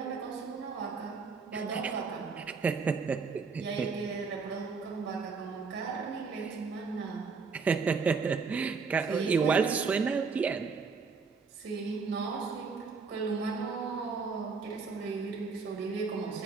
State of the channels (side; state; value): left; quieter; 4.9 dB